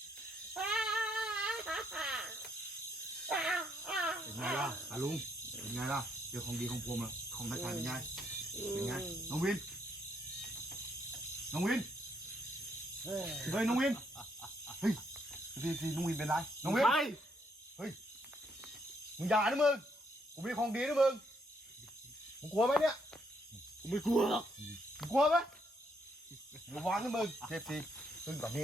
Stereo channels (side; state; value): both; normal; correlation 0.73